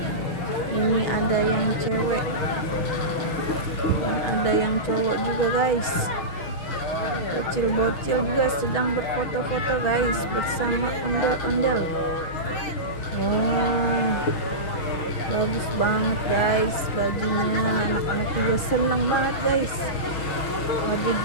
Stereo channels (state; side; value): late; right; 6.2 ms